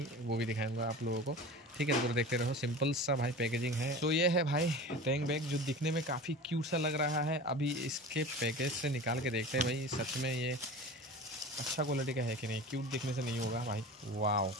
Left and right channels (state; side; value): normal; both; correlation 0.35